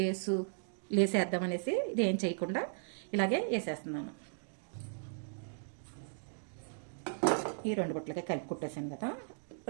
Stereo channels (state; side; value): silent; left; digital silence